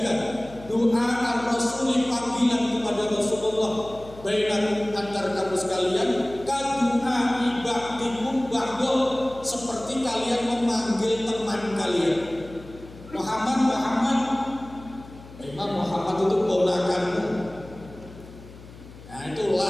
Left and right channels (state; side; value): noise; left; hum, 18 dB below the sound